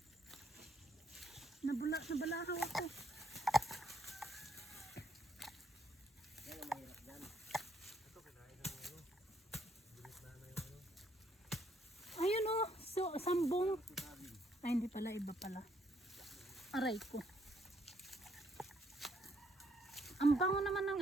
Nabalahaw ako. Yan ang mahirap dyan. Ito kinain ng ano. Bilis na yung ano. Ayun oh. sambong. Ay, hindi pala, iba pala. Aray ko. Ang bango naman ng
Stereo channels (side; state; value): both; normal; correlation 0.70